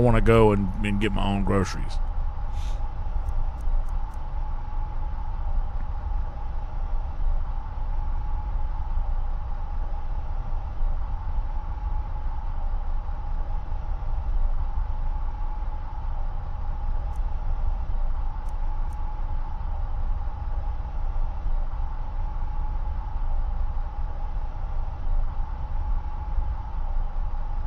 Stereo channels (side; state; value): both; identical; correlation 1.00